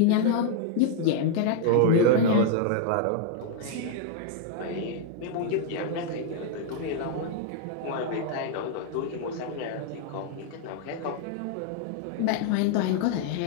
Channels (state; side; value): different; both; correlation 0.00